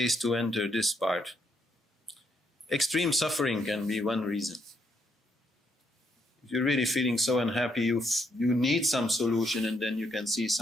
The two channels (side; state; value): both; normal; correlation 0.75